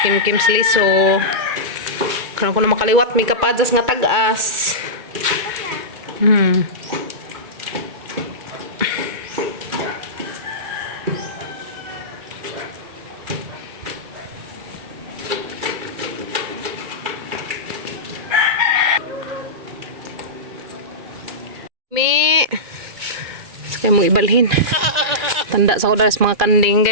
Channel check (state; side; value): late; left; 2.1 ms